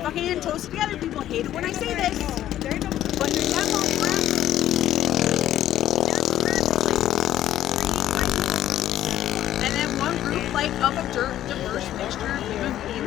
fucking TOSA Together people hate it when I say this, but they're of a diverse mixture of human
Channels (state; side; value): quieter; right; 12.4 dB